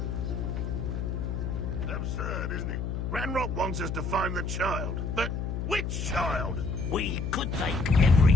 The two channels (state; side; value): noise; left; hum, 3 dB below the sound